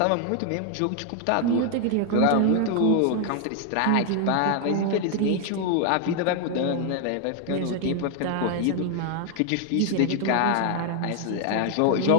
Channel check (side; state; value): both; different; correlation 0.00